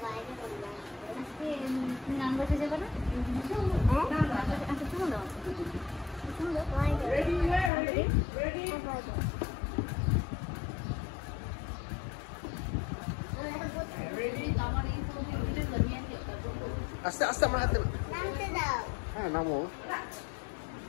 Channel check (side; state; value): right; drops out; at 7.7 s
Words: বাইরে করবো আজকে তুমি গান বসে যাবে না আচ্ছা শুনো দাও আস্তে আস্তে আমার হাতে নামতে দাও হ্যাঁ নামো